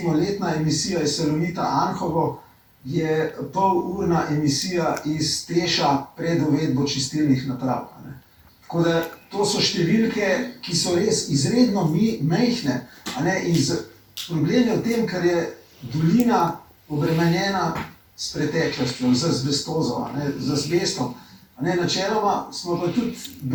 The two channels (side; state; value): both; identical; correlation 1.00